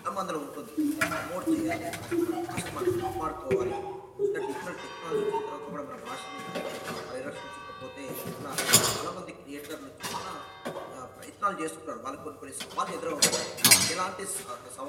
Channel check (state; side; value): identical; both; correlation 1.00